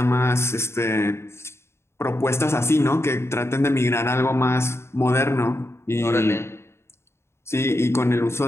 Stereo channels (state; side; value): late; right; 0.13 ms